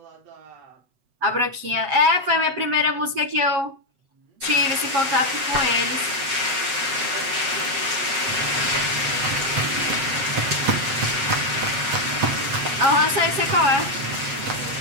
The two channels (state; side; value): late; left; 8.0 ms